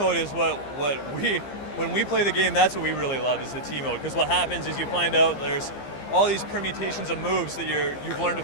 is when we play the game, that's what we really love is the team mode, because what happens is you find out there's all these permutations of moves that you've learned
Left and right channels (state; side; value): late; right; 15 ms